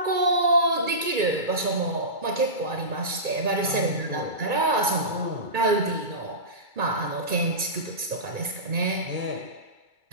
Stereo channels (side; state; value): left; late; 2.3 ms